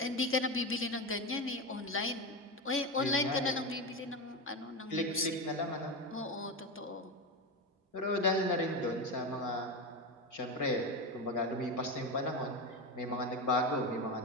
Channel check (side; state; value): both; normal; correlation 0.17